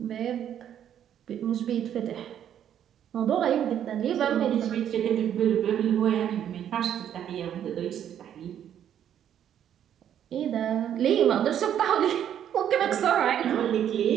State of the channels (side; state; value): left; quieter; 9.9 dB